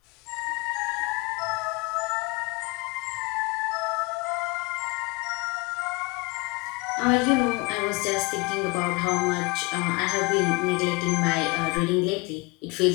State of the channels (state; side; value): quieter; right; 26.8 dB